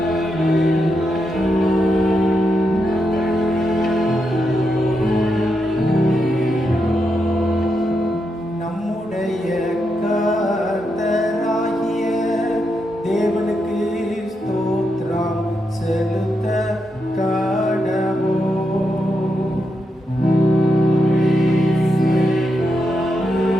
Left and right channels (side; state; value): both; normal; correlation 0.84